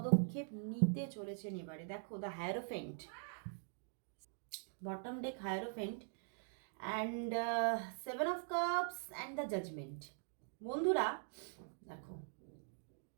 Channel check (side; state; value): left; silent; digital silence